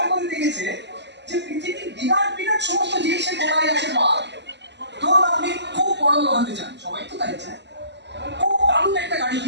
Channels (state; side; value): late; left; 0.51 ms